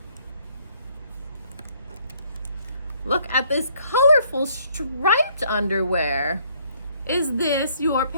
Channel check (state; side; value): inverted; both; correlation -0.65